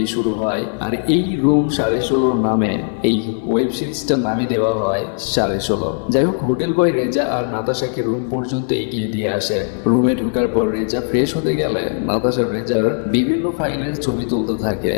শুরু হয়। আর এই রুম 16:30 নামে এই ওয়েব সিরিজটার নামে দেওয়া হয় 16:30। যাই হোক, হোটেল বয় রেজা আর নাতাশাকে রুম পর্যন্ত এগিয়ে দিয়ে আসে। রুমে ঢোকার পর রেজা ফ্রেশ হতে গেলে নাতাশা রেজার বিভিন্ন ফাইলের ছবি তুলতে থাকে।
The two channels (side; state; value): right; silent; 67 dB below the other